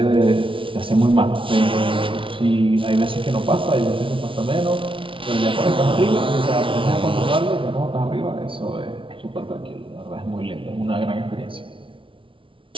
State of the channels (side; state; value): left; late; 0.25 ms